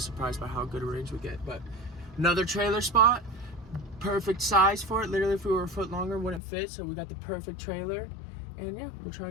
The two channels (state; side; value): drops out; right; at 6.4 s